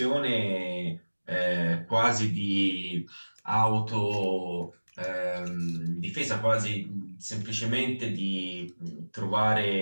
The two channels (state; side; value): inverted; both; correlation -1.00